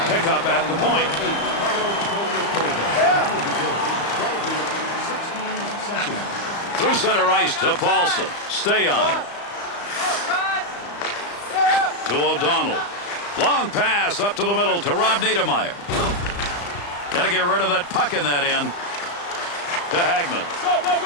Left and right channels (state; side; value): late; right; 35 ms